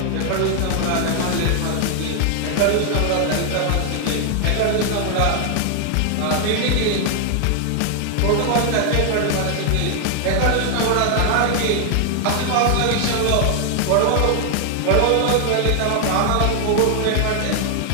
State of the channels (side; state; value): both; different; correlation 0.00